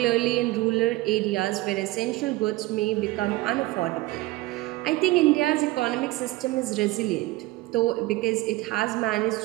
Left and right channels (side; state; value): left; quieter; 19.2 dB